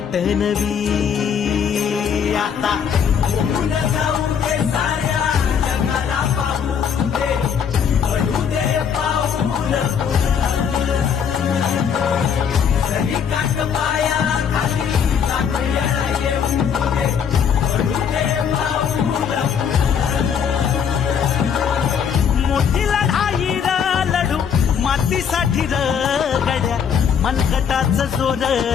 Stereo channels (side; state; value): right; quieter; 7.5 dB